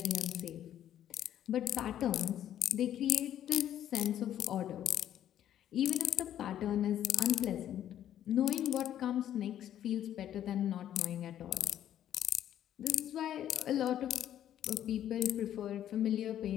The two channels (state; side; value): quieter; right; 11.1 dB